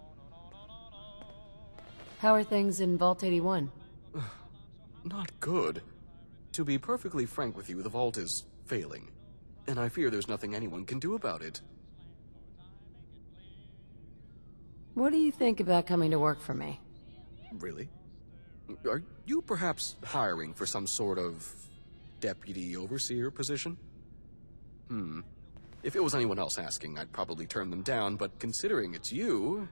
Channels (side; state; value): both; inverted; correlation -1.00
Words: How are things in Vault 81? Not good. To be perfectly frank with you, the Vault is failing. And I fear there's nothing anyone can do about it. What do you think about coming to work for me? Really? Are you perhaps hiring for some sort of deputy overseer position? If it was anyone else asking, I'd probably turn them down, but considering it's you...